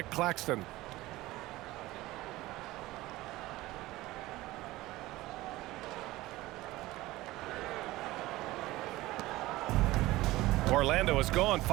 Claxton. Orlando has gone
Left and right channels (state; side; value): quieter; left; 18.2 dB